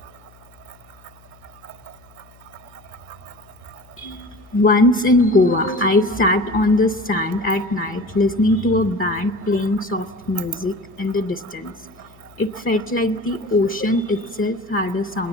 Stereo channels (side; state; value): left; noise; hum, 27 dB below the sound